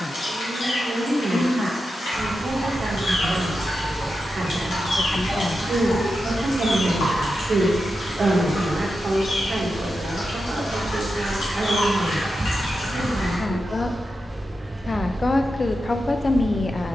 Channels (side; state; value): both; normal; correlation 0.89